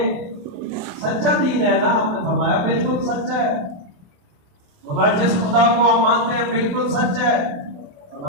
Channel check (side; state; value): left; late; 28 ms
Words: سچا دین ہے نا؟ آپ نے فرمایا بالکل سچا ہے۔ ہمارے جس خدا کو ہم مانتے ہیں بالکل سچ ہے،